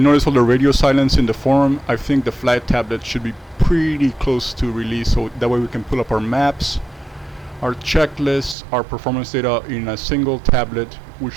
notice all the radio silence in the forum, I think the flight tablet should be pretty close to release, so that way we can pull up our maps, our checklists, our performance data in a single tablet, which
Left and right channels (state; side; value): drops out; left; at 8.6 s